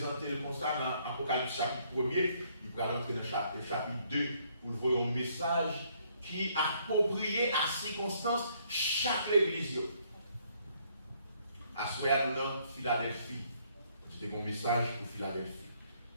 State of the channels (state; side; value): inverted; both; correlation -0.67